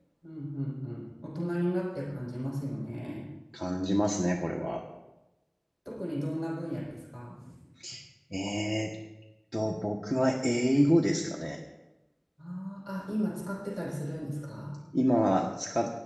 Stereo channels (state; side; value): identical; both; correlation 1.00